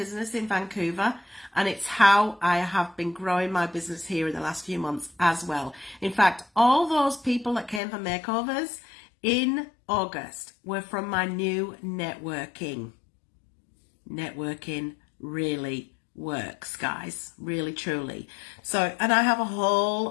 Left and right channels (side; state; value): right; drops out; at 7.8 s